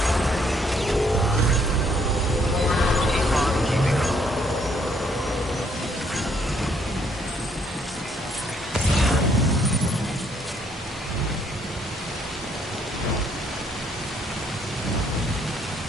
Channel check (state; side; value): normal; both; correlation 0.68